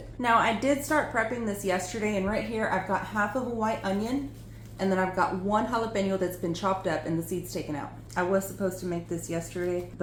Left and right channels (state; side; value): identical; both; correlation 1.00